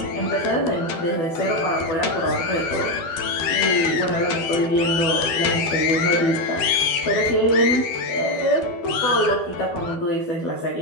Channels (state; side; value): late; right; 12 ms